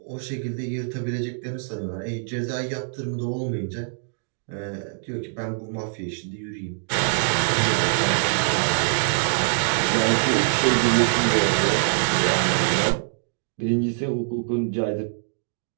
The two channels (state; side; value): silent; left; digital silence